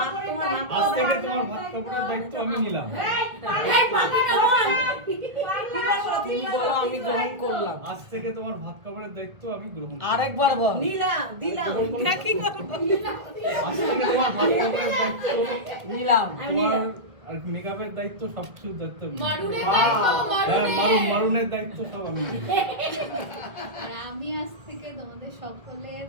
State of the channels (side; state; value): left; late; 1.3 ms